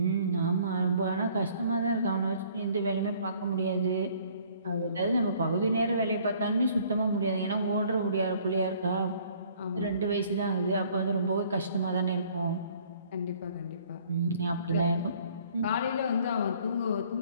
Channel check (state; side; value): inverted; both; correlation -0.58